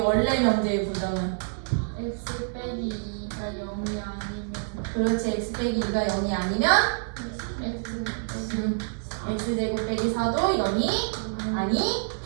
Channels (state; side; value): silent; left; digital silence